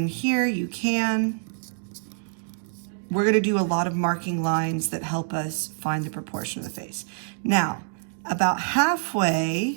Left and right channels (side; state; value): left; silent; digital silence